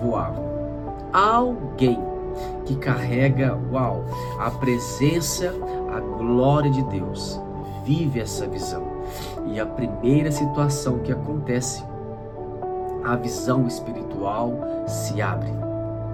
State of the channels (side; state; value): both; identical; correlation 1.00